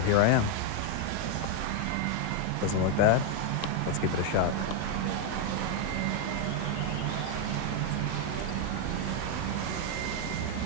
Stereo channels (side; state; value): both; different; correlation 0.01